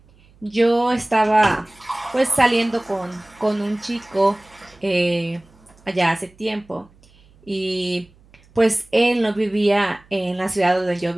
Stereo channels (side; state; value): right; noise; hum, 29 dB below the sound